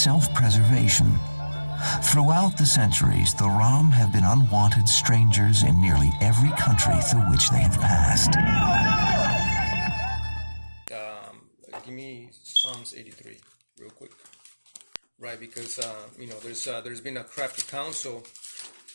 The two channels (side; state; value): both; inverted; correlation -1.00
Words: Throughout the centuries, the Rom have been unwanted strangers in nearly every country through which they have passed. Give me Psalms 83 real quick, right? Because there's been a crafty counsel